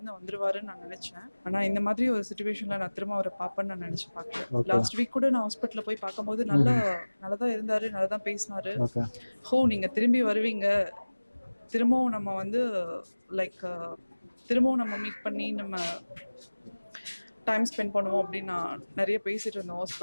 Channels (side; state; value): both; inverted; correlation -1.00